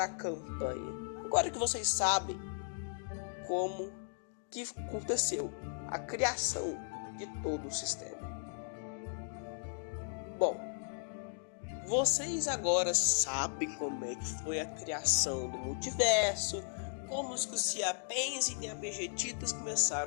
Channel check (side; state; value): right; silent; digital silence